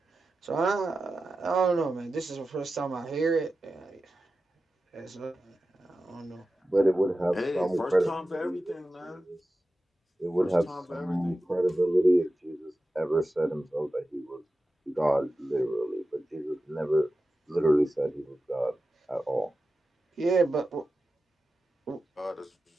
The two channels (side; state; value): both; normal; correlation 0.93